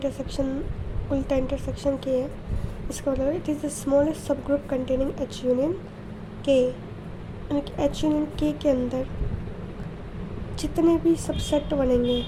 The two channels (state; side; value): identical; both; correlation 1.00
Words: उल्टा इंटरसेक्शन के है, इसका मतलब इट इज़ द स्मॉलेस्ट सब ग्रुप कंटेनिंग एच यूनियन के, यानी कि एच यूनियन के अंदर जितने भी सबसेट बनेंगे,